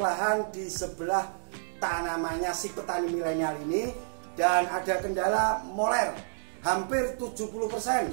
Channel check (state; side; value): silent; left; digital silence